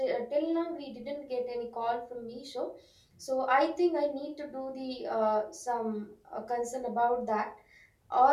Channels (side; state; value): both; identical; correlation 1.00